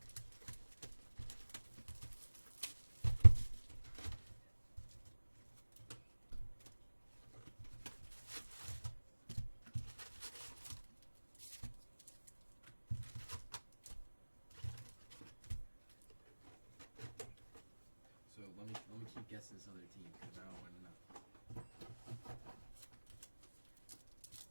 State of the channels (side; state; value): both; inverted; correlation -1.00